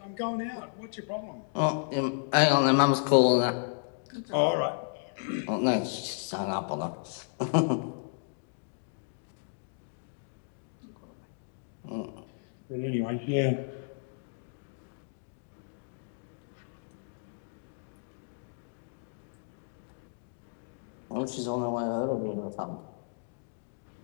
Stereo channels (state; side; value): silent; right; digital silence